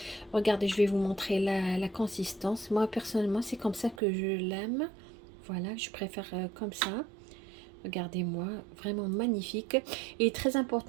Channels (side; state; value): left; drops out; at 4.0 s